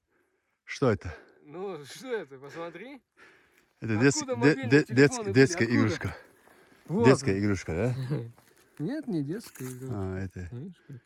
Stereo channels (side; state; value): both; identical; correlation 1.00